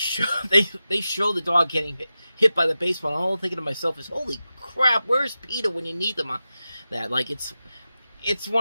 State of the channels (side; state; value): both; inverted; correlation -0.93